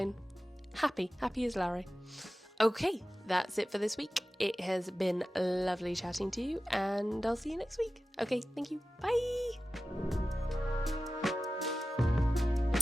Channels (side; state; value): both; normal; correlation 0.95